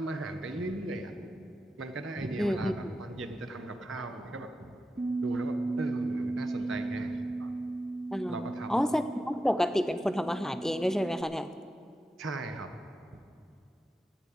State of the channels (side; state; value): both; normal; correlation 0.90